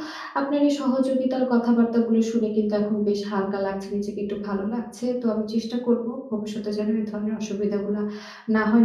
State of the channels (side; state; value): both; identical; correlation 1.00